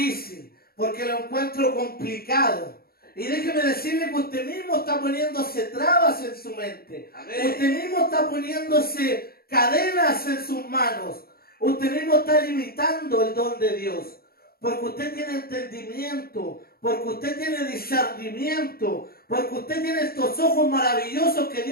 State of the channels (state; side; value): late; right; 0.44 ms